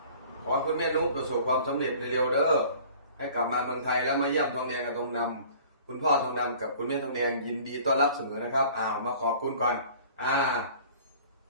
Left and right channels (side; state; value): both; inverted; correlation -0.48